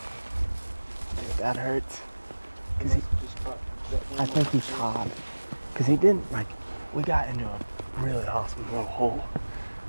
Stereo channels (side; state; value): both; inverted; correlation -1.00